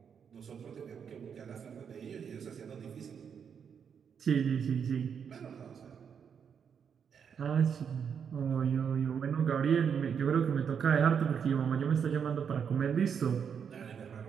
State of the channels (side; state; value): left; quieter; 7.2 dB